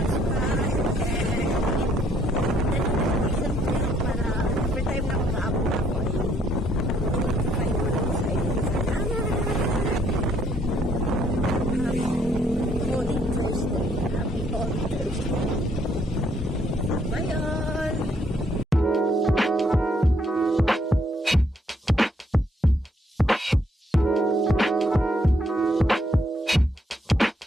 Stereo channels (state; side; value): normal; both; correlation 0.69